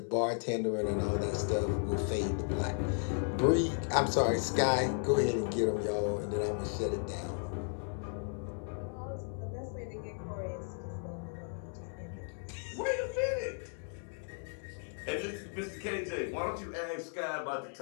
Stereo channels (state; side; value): silent; right; 54 dB below the other